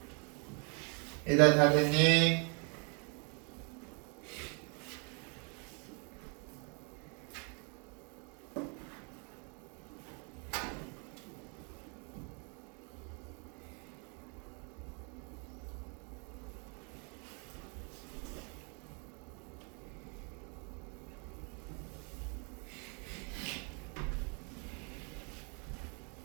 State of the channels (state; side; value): quieter; left; 35.8 dB